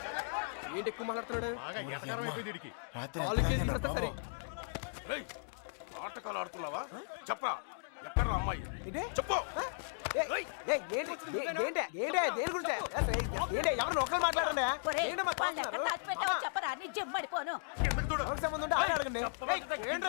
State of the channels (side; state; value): right; silent; digital silence